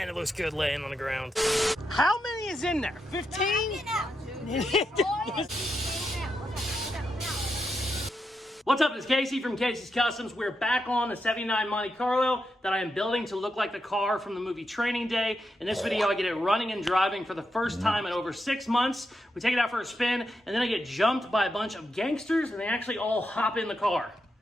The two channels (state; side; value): normal; both; correlation 0.85